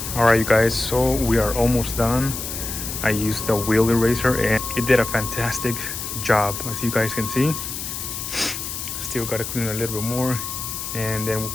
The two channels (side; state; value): left; noise; hiss, 6 dB below the sound